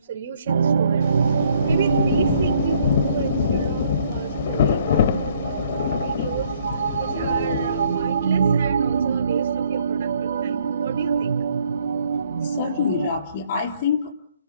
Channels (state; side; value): inverted; both; correlation -0.64